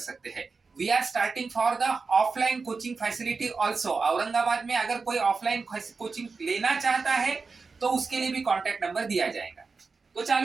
हैं. We are starting for the offline coaching facility also. Aurangabad में अगर कोई ऑफलाइन कोचिंग लेना चाहता है तो उसके लिए भी कांटेक्ट नंबर दिया जाएगा. तो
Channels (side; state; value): left; quieter; 4.5 dB